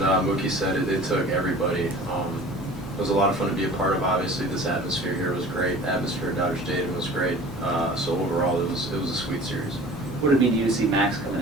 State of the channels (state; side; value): normal; both; correlation 0.43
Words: Mookie said, it took everybody. It was a lot of fun to be a part of. Obviously, this atmosphere here was great. Atmosphere at Dodger Stadium was great. So overall, it was a sweet series. What did it mean to you to see Max coming